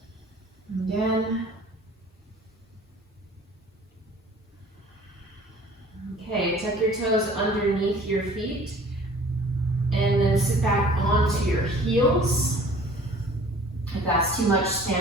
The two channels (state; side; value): normal; both; correlation 0.49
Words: Again. Okay, tuck your toes underneath your feet and then sit back onto your heels. If that's too much,